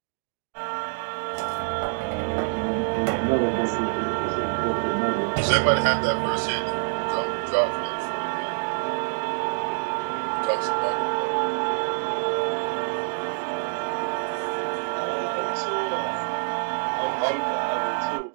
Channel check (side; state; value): left; silent; digital silence